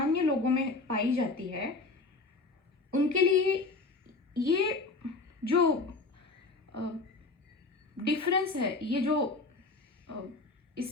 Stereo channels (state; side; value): quieter; right; 3.7 dB